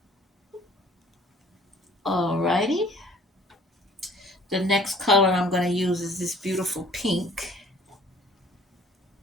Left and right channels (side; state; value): both; normal; correlation 0.54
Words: Alrighty. The next color I'm going to use is this beautiful pink.